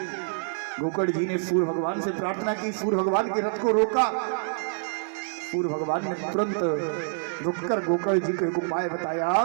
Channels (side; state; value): left; silent; digital silence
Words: गोकर्ण जी ने सूर्य भगवान से प्रार्थना की, सूर्य भगवान के रथ को रोका। सूर्य भगवान ने तुरंत रुककर गोकर्ण जी को एक उपाय बताया।